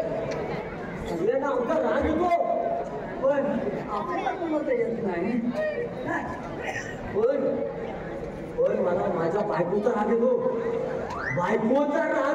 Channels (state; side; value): identical; both; correlation 1.00